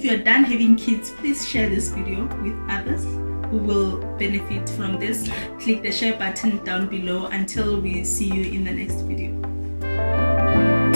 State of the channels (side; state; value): both; inverted; correlation -1.00